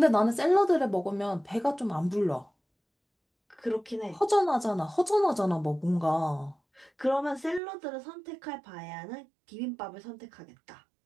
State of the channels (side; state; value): left; drops out; at 7.6 s